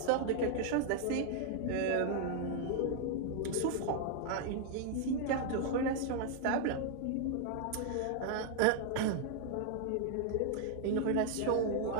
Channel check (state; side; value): different; both; correlation 0.00